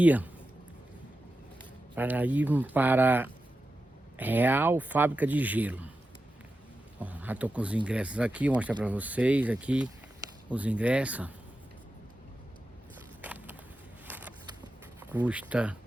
para ir para Real Fábrica de Gelo. Ó, já estou com os ingressos aqui, vou mostrar para vocês aqui os ingressos.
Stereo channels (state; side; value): normal; both; correlation 0.91